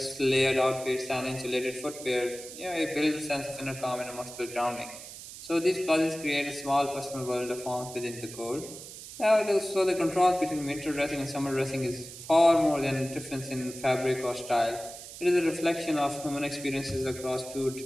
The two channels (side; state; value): right; noise; hiss, 13 dB below the sound